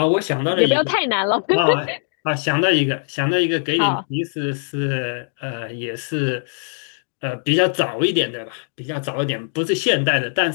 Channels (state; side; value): silent; right; digital silence